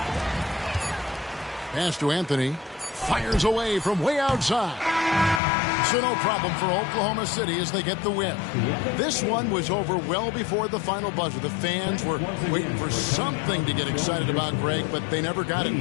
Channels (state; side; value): drops out; right; at 5.4 s